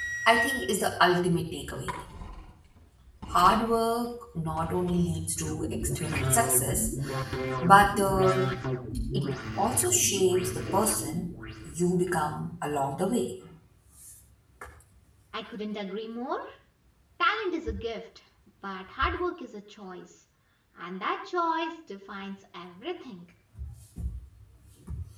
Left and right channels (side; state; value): both; identical; correlation 1.00